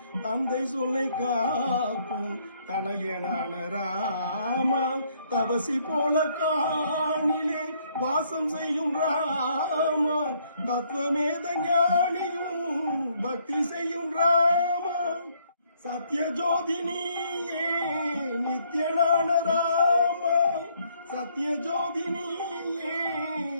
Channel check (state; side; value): inverted; both; correlation -0.68